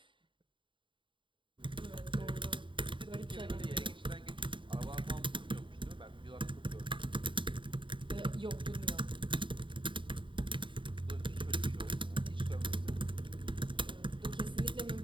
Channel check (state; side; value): late; left; 0.24 ms